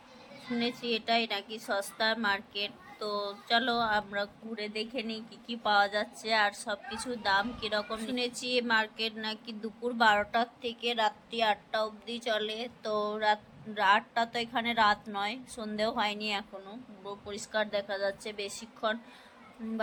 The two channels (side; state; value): both; identical; correlation 1.00